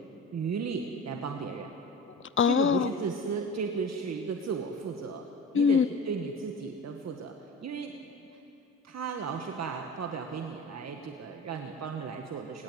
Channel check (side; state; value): both; normal; correlation 0.33